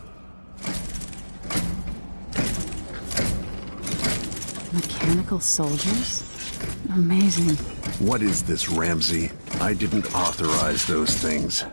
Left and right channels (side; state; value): both; inverted; correlation -1.00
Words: Mechanical soldiers? Amazing. What is this, Ramsay? I didn't authorize those things.